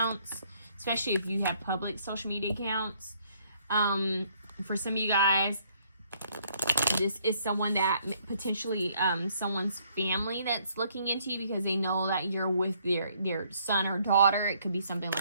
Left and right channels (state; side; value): inverted; both; correlation -0.66